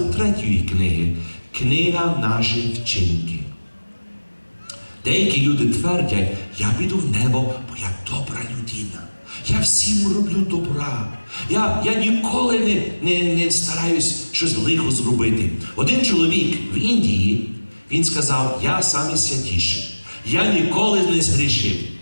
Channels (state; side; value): inverted; both; correlation -1.00